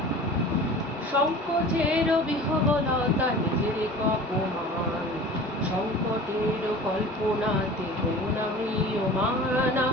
সংকোচের বিহবলতা নিজের অপমান, সংকটের কল্পনাতে হইও না ম্রিয়মানা।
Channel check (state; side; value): normal; both; correlation 0.40